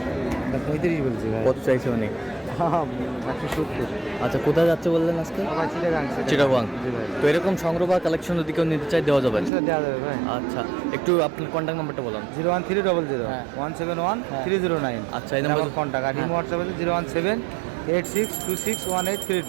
35 বলছি ভাই। কত চাইছে উনি? 170। আচ্ছা, কোথায় যাচ্ছে বললেন আজকে? চিটাগাং। তো এরকম সংগ্রহ বা কালেকশন যদি কেউ নিতে চাই দেওয়া যাবে? দেওয়া যাবে ভাই। আচ্ছা, একটু আপনার কন্ট্যাক্ট নাম্বারটা বলুন। 01300 হ্যাঁ। 171 হ্যাঁ। 309। আচ্ছা, এই নাম্বার কন্ট্যাক্ট আর হ্যাঁ। হোয়াটসঅ্যাপ আছে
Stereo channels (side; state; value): left; drops out; at 9.5 s